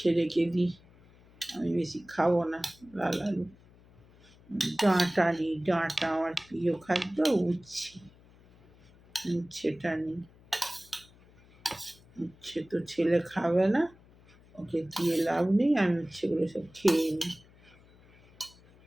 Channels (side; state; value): left; noise; hum, 26 dB below the sound